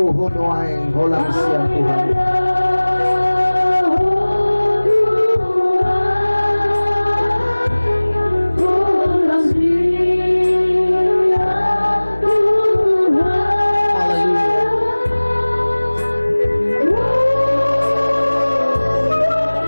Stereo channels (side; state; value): both; inverted; correlation -1.00